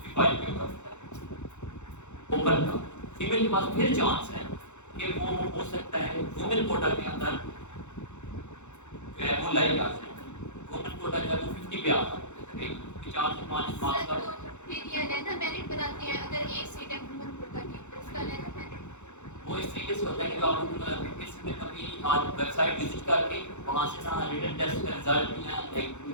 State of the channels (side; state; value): right; late; 0.83 ms